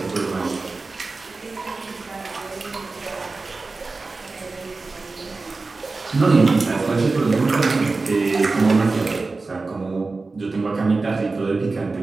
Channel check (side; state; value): left; quieter; 3.8 dB